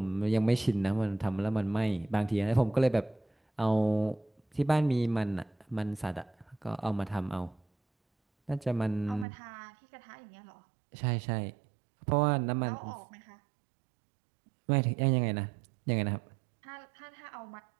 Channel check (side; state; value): left; drops out; at 9.2 s